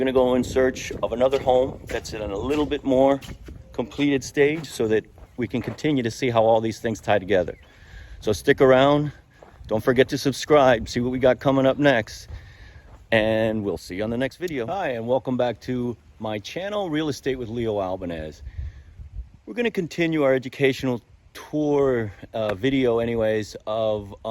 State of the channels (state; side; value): identical; both; correlation 1.00